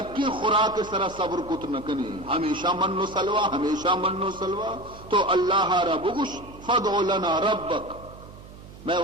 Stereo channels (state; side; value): noise; right; hum, 18 dB below the sound